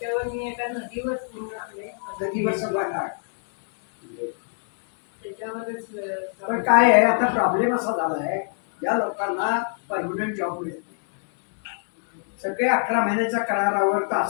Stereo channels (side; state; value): right; silent; digital silence